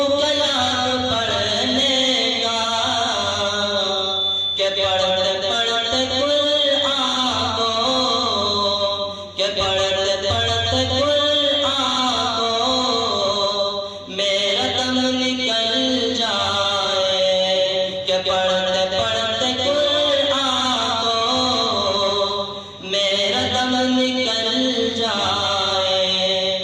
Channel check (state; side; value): identical; both; correlation 1.00